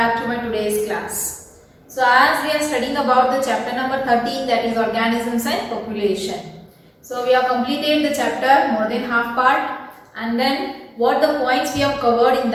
to my today's class. So as we are studying about the chapter number 13, that is organisms and population. So we have completed the chapter more than half part, and then what the points we have covered in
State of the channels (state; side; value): identical; both; correlation 1.00